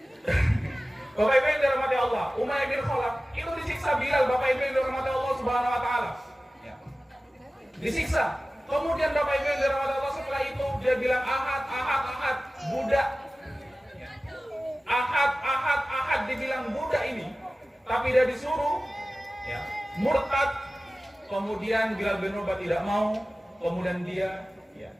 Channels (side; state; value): both; normal; correlation 0.96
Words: Bapak Ibu yang dirahmati Allah, Umayyah bin Khalaf itu disiksa Bilal, Bapak Ibu yang dirahmati Allah Subhanahu wa taala. Ya. Disiksa. Kemudian Bapak Ibu yang dirahmati Allah setelah itu dia bilang ahad, budak. Ahad dibilang budak ini, tapi dia disuruh ya, murtad. Kemudian Bilal bin Rabah tidak mau, kemudian dia ya,